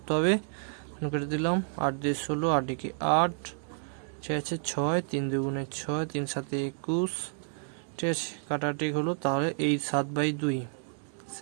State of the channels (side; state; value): left; silent; digital silence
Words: হবে, কেটে দিলাম, 8 দিয়ে 16, 8 দিকে 8, ঠিক আছে 6, 3 দুগুণে 6, 3 7 21, ঠিক আছে কাটাকাটি হলো। তাহলে এই 7/2,